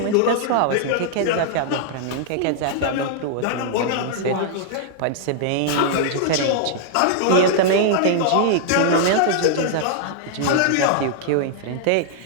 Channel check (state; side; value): different; both; correlation -0.01